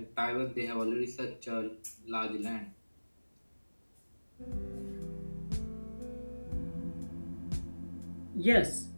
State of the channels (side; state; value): both; inverted; correlation -1.00